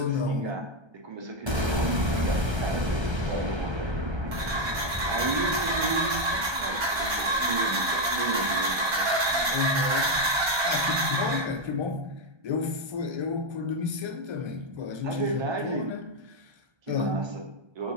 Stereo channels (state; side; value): late; left; 1.3 ms